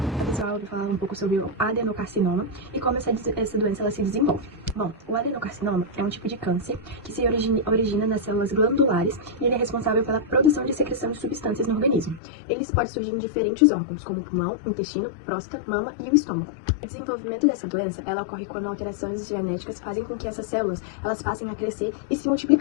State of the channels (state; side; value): drops out; right; at 12.2 s